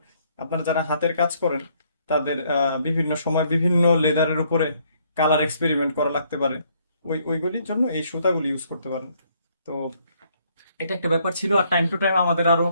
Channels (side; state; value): both; inverted; correlation -0.68